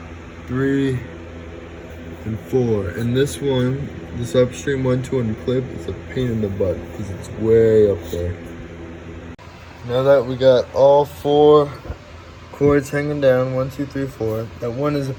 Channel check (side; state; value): both; identical; correlation 1.00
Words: 3, and 4. And this one, this upstream one to unclip, is a pain in the butt because it's way up there. Now that we got all 4 cords hanging down, 1, 2, 3, 4, that one is a